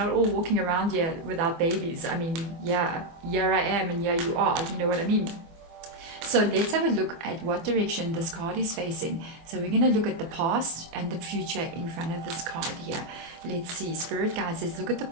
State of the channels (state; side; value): late; left; 24 ms